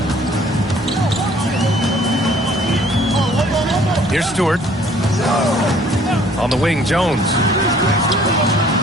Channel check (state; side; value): normal; both; correlation 0.57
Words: Here's Stewart. On the wing, Jones.